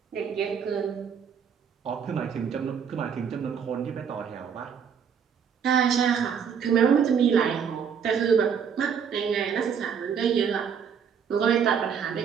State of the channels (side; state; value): left; quieter; 7.2 dB